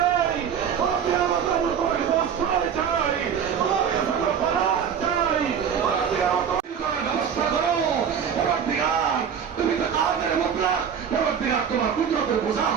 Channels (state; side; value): quieter; left; 7.8 dB